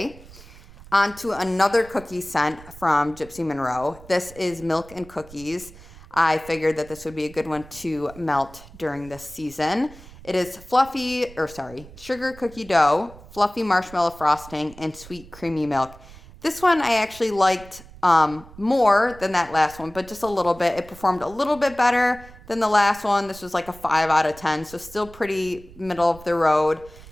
On to another cookie scent from Gypsy Monroe. This is Milk and Cookies. I figured that this would be a good one to melt during this season. It is sugar cookie dough, fluffy marshmallow frosting, and sweet creamy milk. This one I actually liked more than that last one, but just a little bit. It performed a little bit better than the last one. This was like a 5 out of 10, so still pretty middle of the road.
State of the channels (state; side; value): noise; right; rumble, 20 dB below the sound